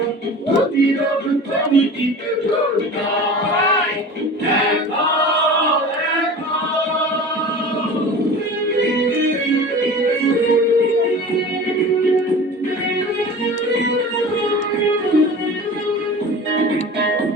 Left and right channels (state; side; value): normal; both; correlation 0.37